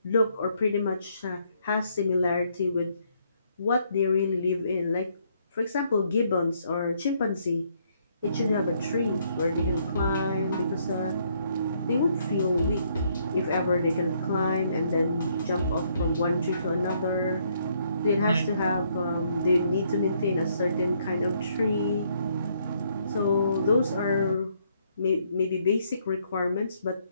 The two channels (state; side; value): inverted; both; correlation -0.70